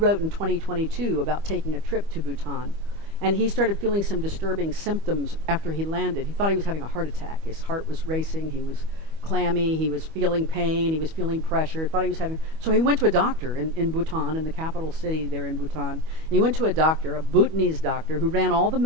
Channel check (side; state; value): left; late; 25 ms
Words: in 2022 about taking a trip to Bhutan. And he started feeling some disturbing symptoms after he landed. He thought he was having a heart attack. His heart was racing, he was clammy, he was feeling pain, he was feeling pressure, thought he was having... So he went to a doctor in Bhutan, in the capital city there in Bhutan. And he went to a doctor, a Bhutanese doctor, who ran all the